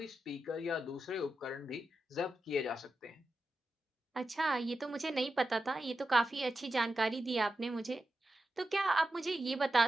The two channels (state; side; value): normal; both; correlation 0.90